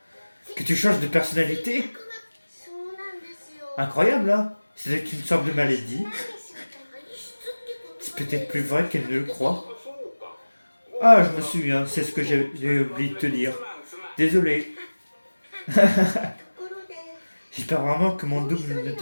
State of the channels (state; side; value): inverted; both; correlation -1.00